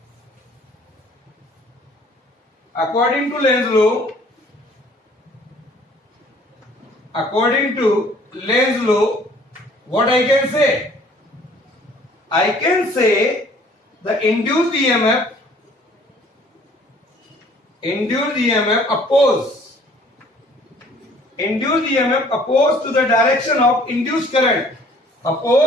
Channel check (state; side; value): normal; both; correlation 0.56